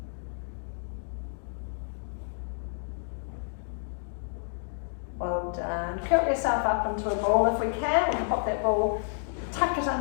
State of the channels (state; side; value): silent; right; digital silence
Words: Well done. Curl yourself up into a ball if we can. We can pop that ball, tuck it